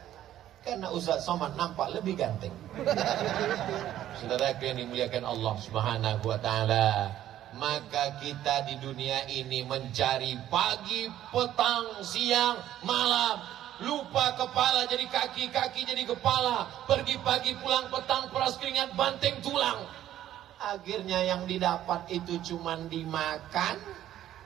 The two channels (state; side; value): quieter; left; 12.3 dB